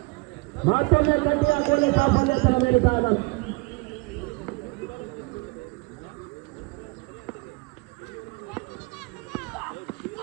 ಮತ್ತೊಮ್ಮೆ ಕಟ್ಟಿ ಹಾಕುವಲ್ಲಿ ಸಾಫಲ್ಯತನ ನೀಡುತ್ತಾ ಇದ್ದಾನೆ.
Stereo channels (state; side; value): quieter; left; 27.0 dB